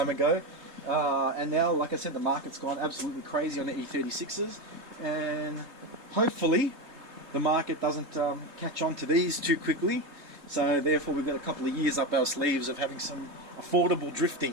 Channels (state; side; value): late; left; 3.3 ms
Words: ago, and now, like I said, the market's gone absolutely crazy on the E36s, and hopefully the market doesn't catch on to these too quickly, so therefore we've got a couple of years up our sleeves of having some affordable